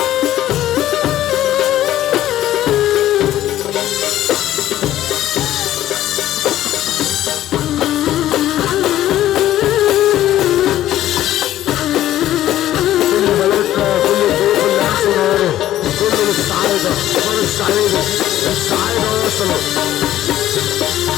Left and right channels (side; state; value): right; quieter; 13.2 dB